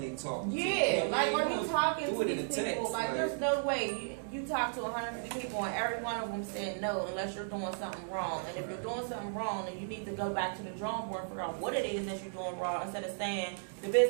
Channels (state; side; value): silent; left; 55 dB below the other